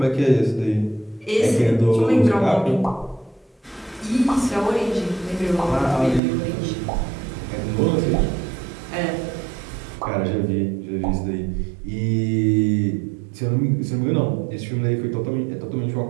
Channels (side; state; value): left; drops out; at 6.2 s